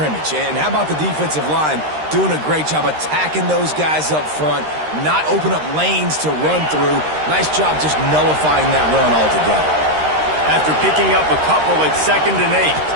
And how about the defensive line doing a great job attacking those guys up front, not open up lanes to run through. Nice job just nullifying that run altogether. After picking up a couple at 2nd and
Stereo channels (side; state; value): left; late; 13 ms